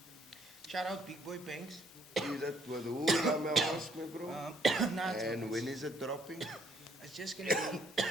Shout out Big Boy Banks. Is that with who? Ask me, bro. Nah, it's And when is it dropping? It's just gonna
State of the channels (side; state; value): both; normal; correlation 0.66